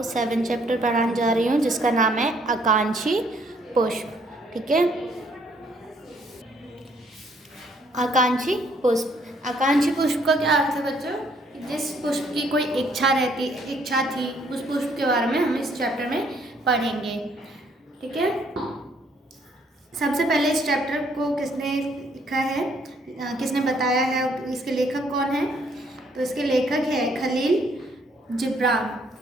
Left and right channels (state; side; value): normal; both; correlation 0.66